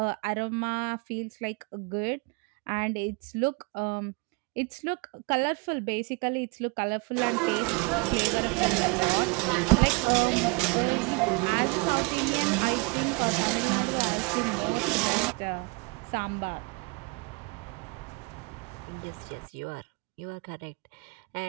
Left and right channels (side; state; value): left; quieter; 30.1 dB